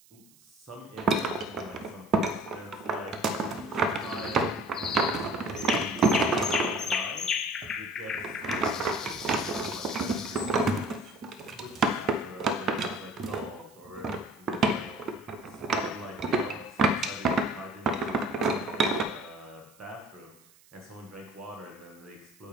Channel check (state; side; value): noise; right; hiss, 28 dB below the sound